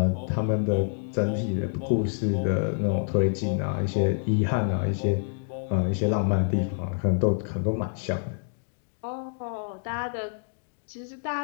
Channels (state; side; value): silent; right; digital silence